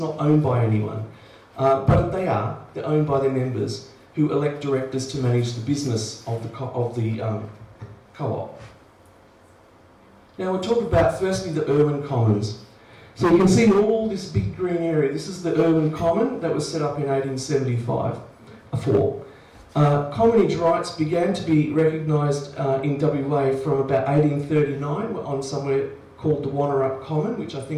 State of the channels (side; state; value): both; identical; correlation 1.00